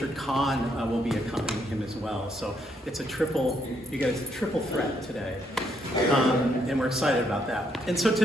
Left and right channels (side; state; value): both; normal; correlation 0.74